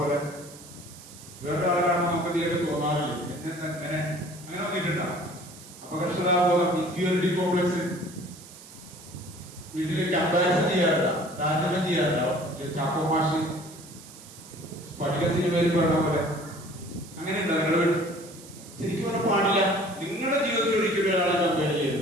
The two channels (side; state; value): right; noise; hiss, 18 dB below the sound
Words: പോലെ. വേറെ ആരാണ് നമുക്ക് തീരെ തോന്നാറില്ല. അങ്ങനെ വന്നിട്ടുണ്ടോ? അപകർഷതാബോധം, ഇൻഫീരിയോറിറ്റി കോംപ്ലക്സ്, വീട്ടില് കമ്പാരിസൺ ചെയ്യാറുണ്ടോ? താരതമ്യം ചെയ്യാറുണ്ടോ? ചാക്കോ മാഷ് സ്ഫടിക സിനിമയിൽ പറഞ്ഞ പോലെ അങ്ങനെ ഉണ്ടോ നിങ്ങളുടെ വീട്ടിൽ? ശരിക്കും പറഞ്ഞാൽ പാടില്ല. നിങ്ങളുടെ ജീവിതത്തിൽ ഒരിക്കലും ഒരാളെ കമ്പയർ